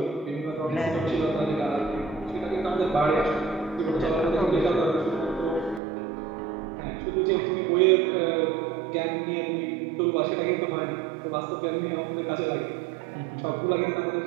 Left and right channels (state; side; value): drops out; left; at 5.8 s